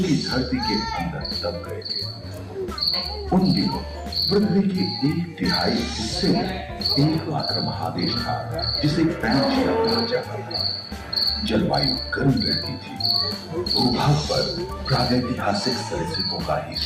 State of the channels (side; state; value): both; identical; correlation 1.00